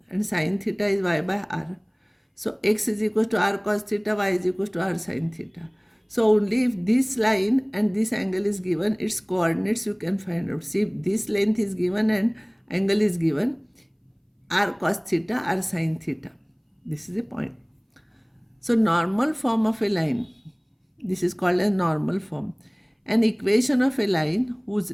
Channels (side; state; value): both; identical; correlation 1.00